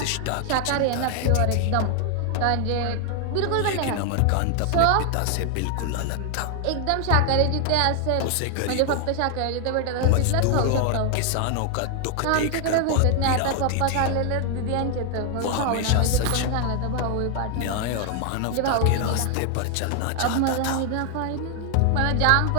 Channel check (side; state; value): both; different; correlation 0.00